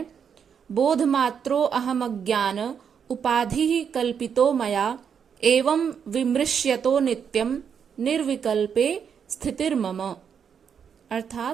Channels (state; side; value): quieter; left; 7.3 dB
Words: बोध मात्रो अहम अज्ञान उपाधि ही कल्पितो मया एवं विमृश्यतो नित्यम निर्विकल्पे स्थितिर्मम।